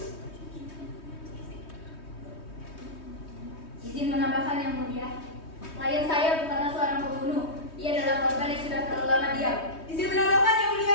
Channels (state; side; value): late; right; 3.2 ms